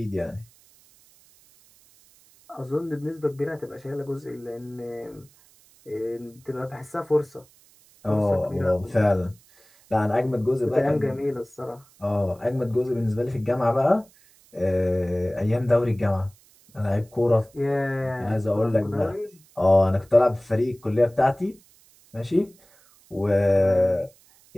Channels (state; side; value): noise; right; hiss, 29 dB below the sound